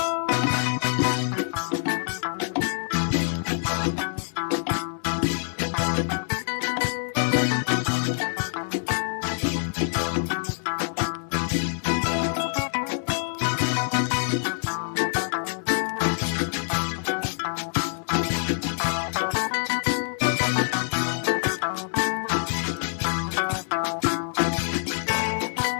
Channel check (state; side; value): silent; right; 61 dB below the other